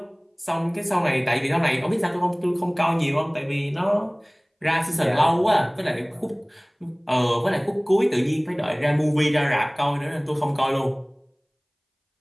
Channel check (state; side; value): identical; both; correlation 1.00